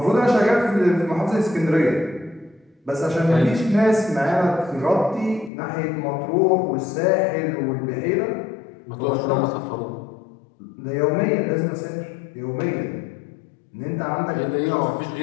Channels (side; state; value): right; drops out; at 5.5 s